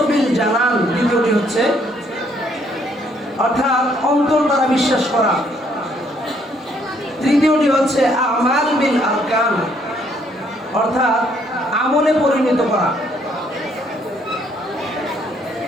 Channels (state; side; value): normal; both; correlation 0.67